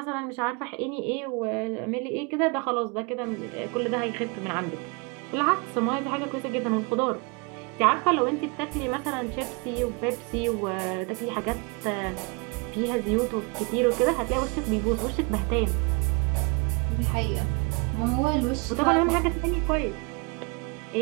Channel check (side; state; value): left; quieter; 30.7 dB